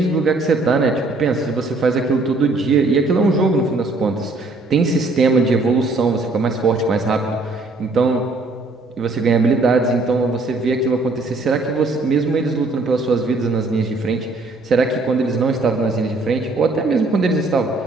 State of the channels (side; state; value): left; quieter; 3.2 dB